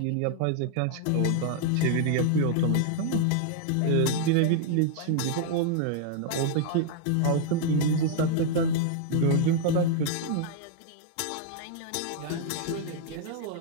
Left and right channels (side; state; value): both; different; correlation -0.01